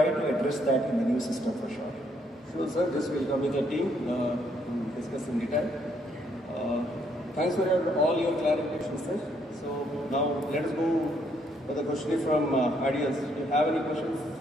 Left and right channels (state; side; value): normal; both; correlation 0.71